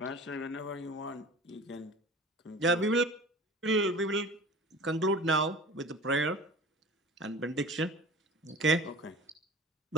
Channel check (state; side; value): normal; both; correlation 0.39